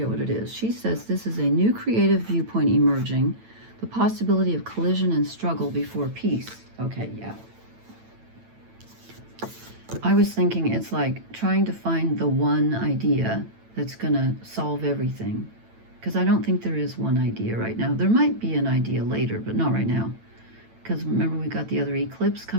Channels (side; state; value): left; late; 9.0 ms